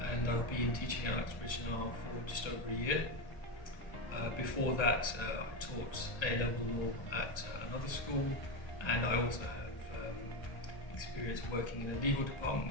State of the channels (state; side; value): late; right; 1.3 ms